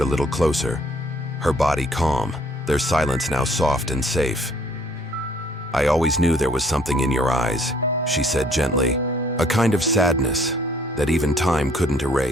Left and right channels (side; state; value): both; normal; correlation 0.61